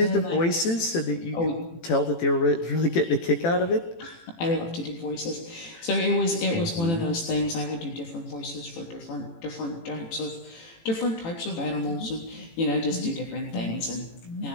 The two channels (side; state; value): right; late; 18 ms